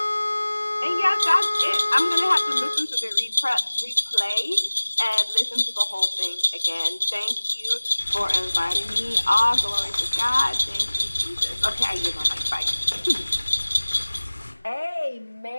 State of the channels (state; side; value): inverted; both; correlation -1.00